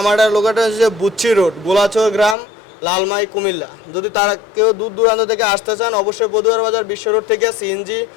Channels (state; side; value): drops out; right; at 2.4 s